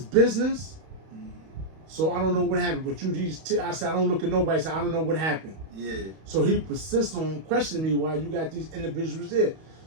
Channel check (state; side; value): late; left; 31 ms